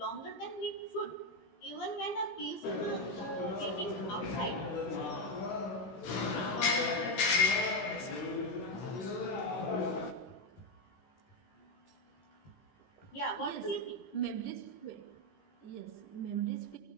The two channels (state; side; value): late; right; 16 ms